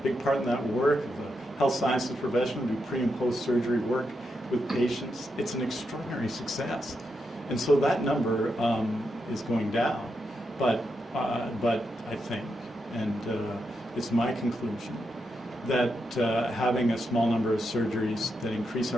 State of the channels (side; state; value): both; normal; correlation 0.84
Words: big part in that work, of the health sciences profession who do pre and post surgery work with patients. It's an extraordinary success. And so that number is going down. But I think, and it's my conclusion, that having a small number of surgeries that increase